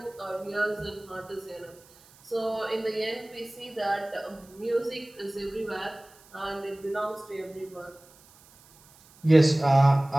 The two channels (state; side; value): noise; right; hiss, 26 dB below the sound